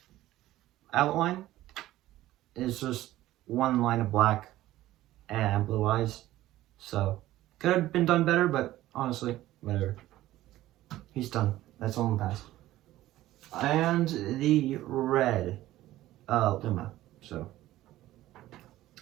outline. It's just one line of black and blue eyes. So could have been done better, but honestly, whatever. He's done. That's all in the past. And the red Luma. So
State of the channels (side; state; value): left; quieter; 15.3 dB